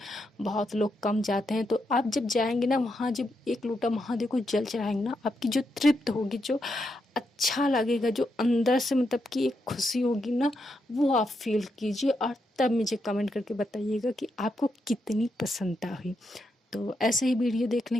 बहुत लोग कम जाते हैं। तो आप जब जाएंगे ना वहाँ, जब एक लोटा महादेव को जल चढ़ाएंगे ना, आपकी जो तृप्त होगी, जो अच्छा लगेगा, जो अंदर से मतलब कि एक खुशी होगी ना, वो आप फील कीजिए और तब मुझे कमेंट करके बताइएगा कि आपको कितनी प्रसन्नता हुई। तो ऐसे ही वीडियो देखने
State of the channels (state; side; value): normal; both; correlation 0.82